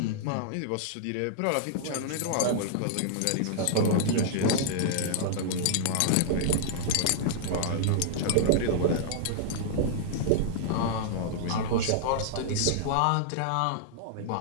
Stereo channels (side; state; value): both; different; correlation -0.01